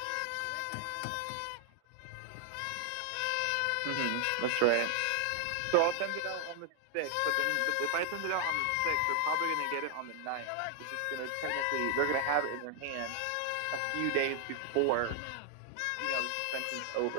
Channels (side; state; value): both; different; correlation 0.00